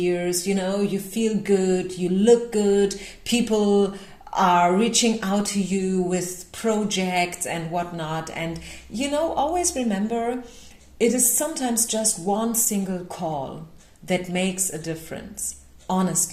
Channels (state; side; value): identical; both; correlation 1.00